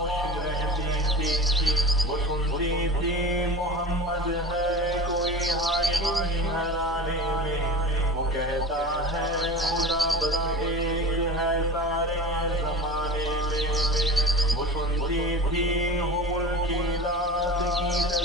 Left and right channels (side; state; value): both; normal; correlation 0.32